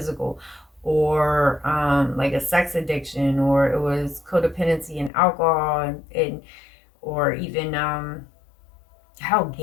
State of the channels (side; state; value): right; drops out; at 5.1 s